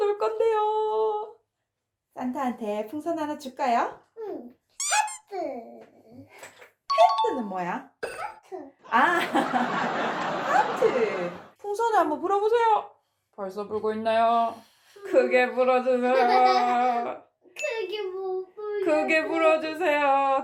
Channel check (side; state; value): both; identical; correlation 1.00